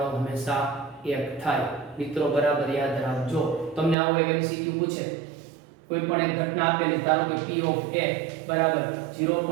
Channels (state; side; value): drops out; left; at 4.0 s